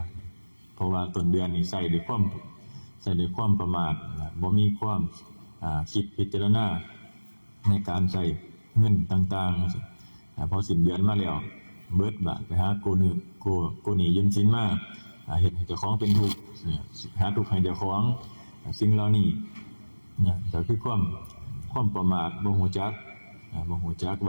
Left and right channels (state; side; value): inverted; both; correlation -1.00